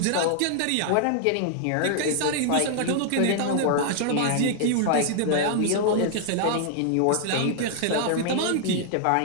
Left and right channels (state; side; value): different; both; correlation 0.00